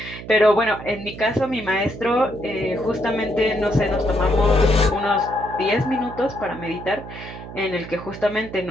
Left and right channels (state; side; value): noise; right; hum, 13 dB below the sound